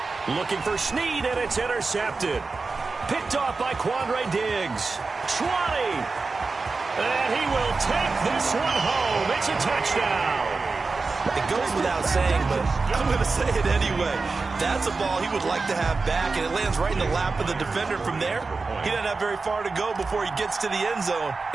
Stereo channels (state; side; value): quieter; left; 4.1 dB